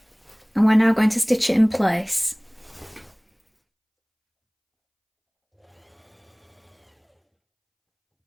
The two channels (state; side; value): identical; both; correlation 1.00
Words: and we're now going to stitch it in place.